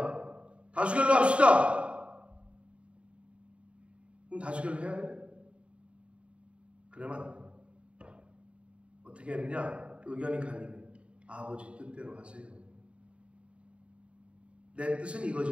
다수결로 합시다. 그럼 다수결로 해야 돼? 그러면 안 돼. 어떻게 했느냐? 의견이 갈리면 아버지 뜻대로 하세요. 내 뜻은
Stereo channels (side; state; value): left; late; 0.060 ms